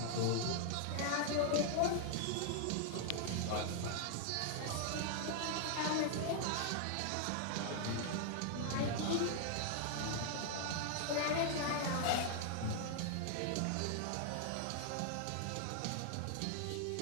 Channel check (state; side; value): different; both; correlation 0.00